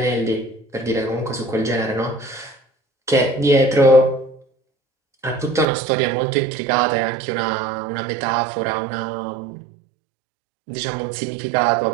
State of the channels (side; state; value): left; drops out; at 5.7 s